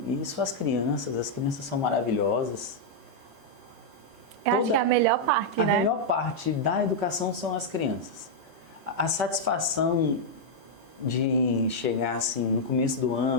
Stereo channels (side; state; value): both; normal; correlation -0.03